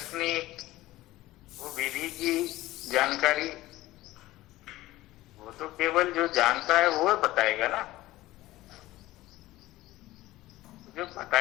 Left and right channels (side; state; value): right; quieter; 17.1 dB